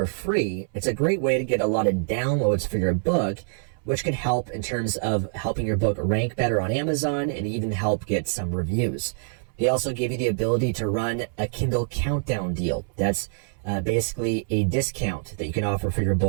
free, it's a great way to get a lot of downloads for your book, which can help in terms of helping your book rank better on Amazon and even help get some reviews. They also give you the ability to run a Kindle countdown deal. That's basically a discount that you can offer for your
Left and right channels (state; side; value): silent; left; 62 dB below the other